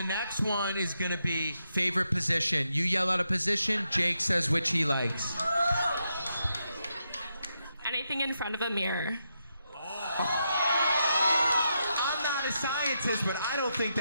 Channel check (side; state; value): both; inverted; correlation -0.83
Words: next one is gonna be favorite position. You yell out a position, Jake says which he likes. Anything in front of a mirror. I'm not a scientist, but I don't think